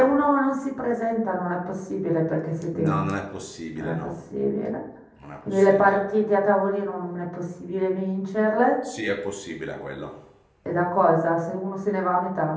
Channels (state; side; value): identical; both; correlation 1.00